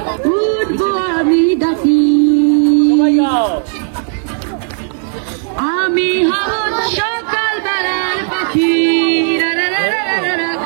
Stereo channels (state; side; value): silent; left; 58 dB below the other